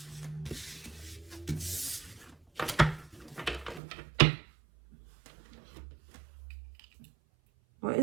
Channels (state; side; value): drops out; left; at 3.8 s